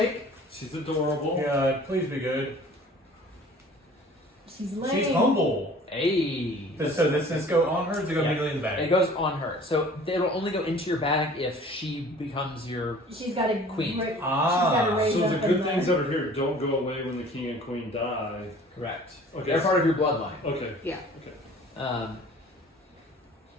She's adorable. Yeah, please be good. She's lame. She's humble. Hey. So does this go on her? Or does it go Yeah. immediately in the It bag? goes on her. So it'll only go into your bag if she becomes your. She's got a Queen. Great, Ah. she's got a raise So up the in good things that are here don't go away when the king and queen die. Correct. Okay. They're part of your bloodline. Okay. Yeah. Um,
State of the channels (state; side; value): normal; both; correlation 0.48